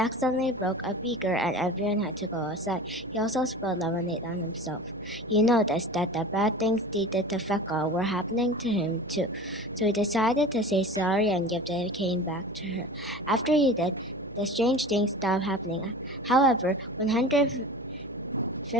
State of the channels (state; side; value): noise; right; hum, 21 dB below the sound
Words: broke a beaker and everyone had to go outside. He also spilled lemonade on himself. He noticed that the bad things he did to Fekka were happening to him too, so he decided to say sorry and give the cane back to her. After he did, the strange things stopped happening. However,